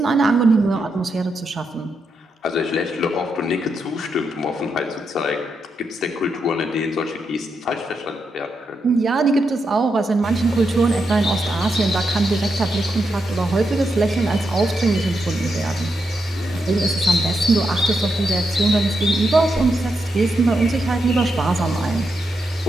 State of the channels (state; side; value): normal; both; correlation 0.84